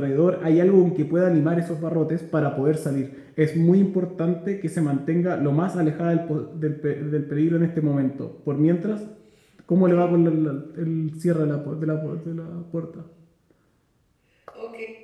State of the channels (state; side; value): identical; both; correlation 1.00